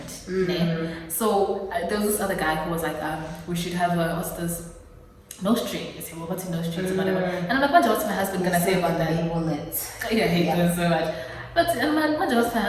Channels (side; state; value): both; identical; correlation 1.00